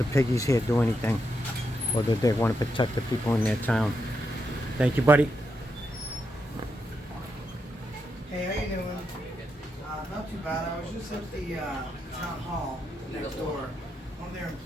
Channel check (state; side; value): normal; both; correlation 0.83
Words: piggies here do anything, or that they want to protect the people in their town. Thank you, buddy. Hey, how you doing? Not too bad. I was just at the town hall next door. One of their